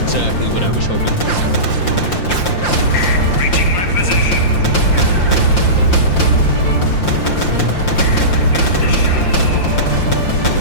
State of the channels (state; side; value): late; right; 5.8 ms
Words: exactly what I was hoping for. Reaching my position.